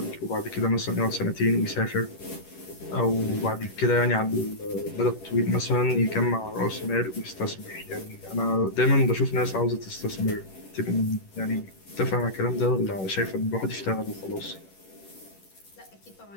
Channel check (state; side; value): late; right; 11 ms